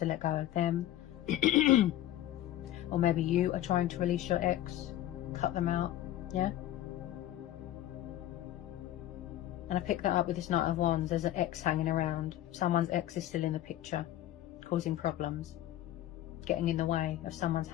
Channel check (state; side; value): quieter; right; 13.4 dB